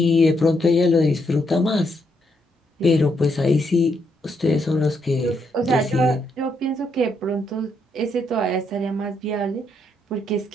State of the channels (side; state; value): both; normal; correlation 0.77